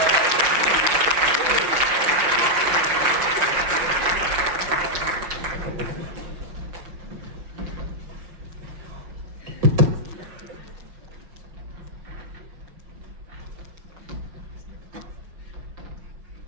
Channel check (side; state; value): left; late; 5.8 ms